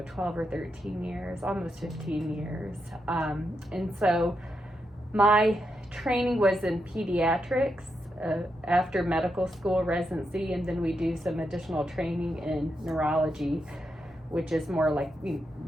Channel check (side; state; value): both; normal; correlation 0.84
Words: 12 or 13 years, almost 15 years. And so my training was in pediatrics after medical school residency, and then we do some additional training in neurology, which is more